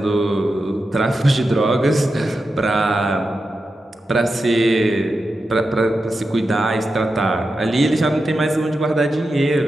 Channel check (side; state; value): both; normal; correlation 0.90